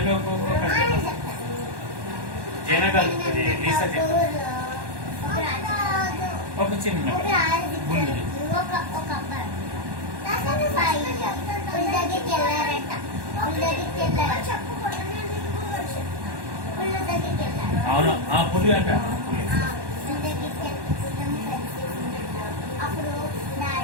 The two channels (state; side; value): late; left; 1.1 ms